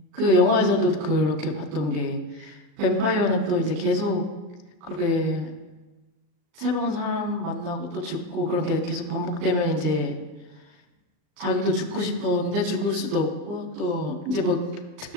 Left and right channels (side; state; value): left; late; 39 ms